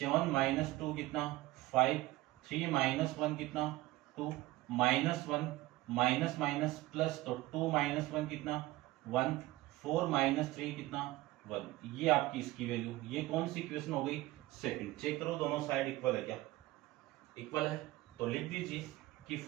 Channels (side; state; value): left; quieter; 18.3 dB